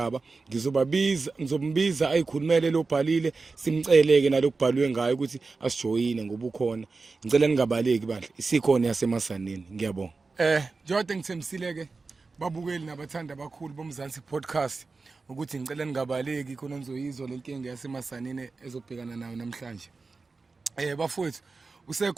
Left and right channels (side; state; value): left; quieter; 4.1 dB